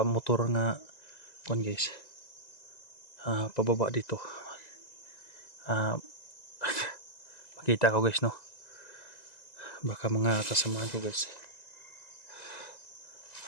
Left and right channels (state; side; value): late; right; 2.0 ms